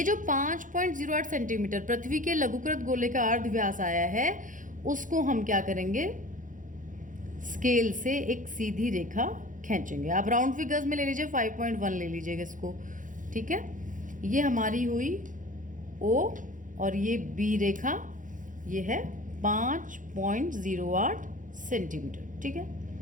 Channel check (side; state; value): left; late; 0.38 ms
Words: जो 5.08 सेंटीमीटर पृथ्वी के लघुकृत गोले का अर्धव्यास आया है, उसको हम क्या करेंगे? स्केल से एक सीधी रेखा खींचेंगे। आप राउंड फिगर्स में ले लीजिए, 5.1 ले लीजिएगा इसको। ठीक है। ये हमारी हुई O, और ये B रेखा, ये है 5.08 सेंटीमीटर। ठीक है।